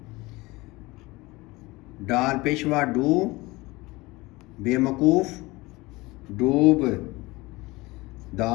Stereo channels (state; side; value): quieter; right; 21.9 dB